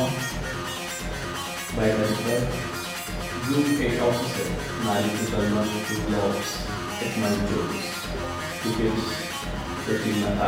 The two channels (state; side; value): identical; both; correlation 1.00